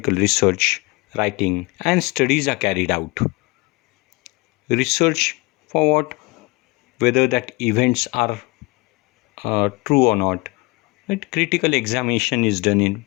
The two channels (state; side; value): quieter; right; 25.1 dB